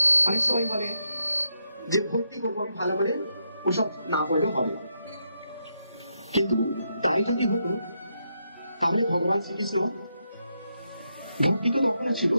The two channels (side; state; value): both; inverted; correlation -0.81